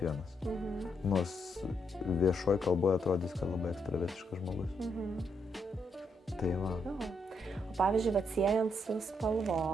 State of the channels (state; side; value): normal; both; correlation 0.77